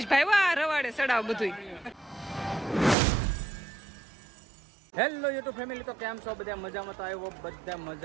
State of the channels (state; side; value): drops out; left; at 3.0 s